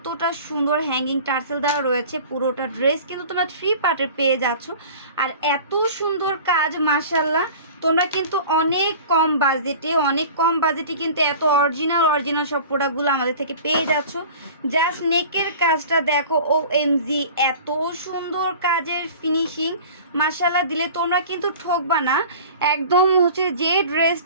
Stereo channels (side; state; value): both; inverted; correlation -0.41